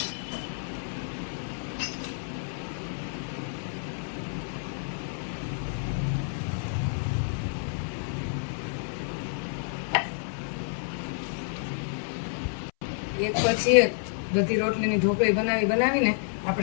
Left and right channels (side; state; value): right; silent; 58 dB below the other